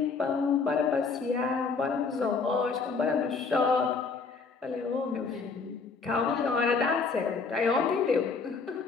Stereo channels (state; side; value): quieter; right; 4.8 dB